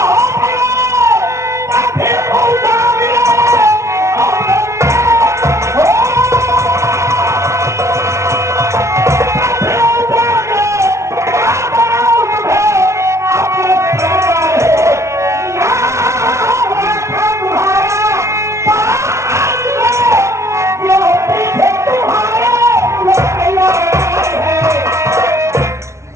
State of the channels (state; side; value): late; left; 0.13 ms